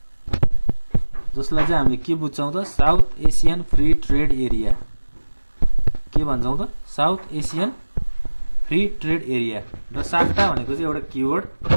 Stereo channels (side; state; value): both; inverted; correlation -1.00